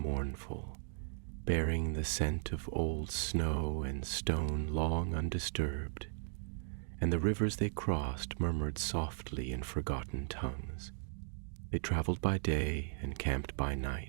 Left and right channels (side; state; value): left; silent; digital silence